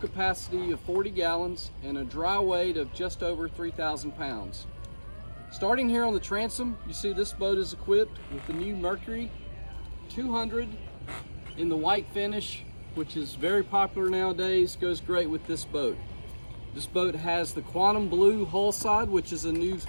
of 40 gallons, and a dry weight of just over 3,000 pounds. Starting here on the transom, you see this boat is equipped with the new Mercury 200 in the white finish, which is very popular nowadays, goes great with this boat. This boat has the quantum blue hull side, which is a new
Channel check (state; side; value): inverted; both; correlation -1.00